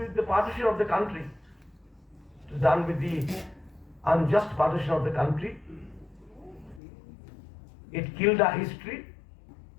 the partition of the country. It was done with the unjust partition of the country. It killed our history.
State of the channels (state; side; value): drops out; right; at 6.8 s